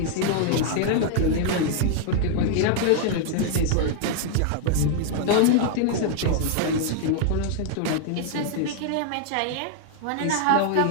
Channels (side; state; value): both; different; correlation 0.00